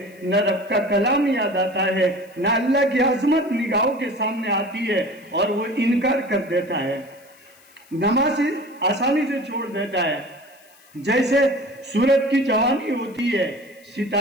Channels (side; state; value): left; noise; hiss, 28 dB below the sound